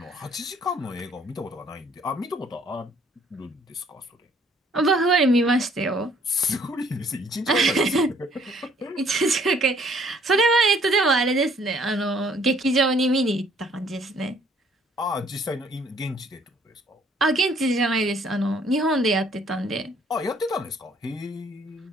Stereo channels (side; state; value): both; normal; correlation 0.61